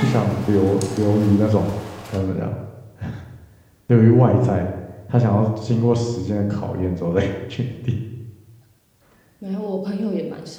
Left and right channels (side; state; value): both; identical; correlation 1.00